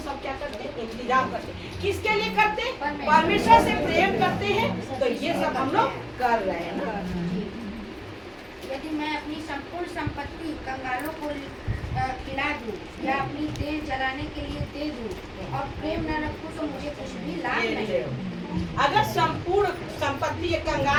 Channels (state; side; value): identical; both; correlation 1.00